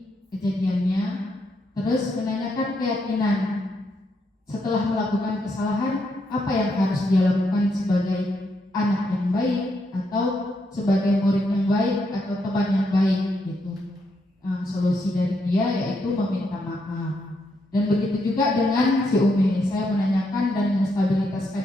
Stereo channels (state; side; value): normal; both; correlation 0.79